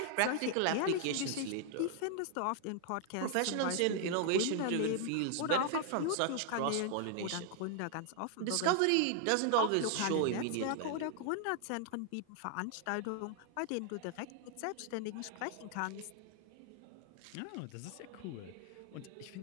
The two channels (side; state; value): both; different; correlation 0.00